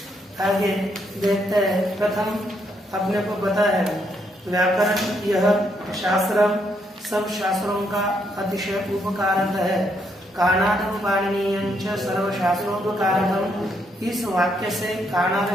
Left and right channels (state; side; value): normal; both; correlation 0.75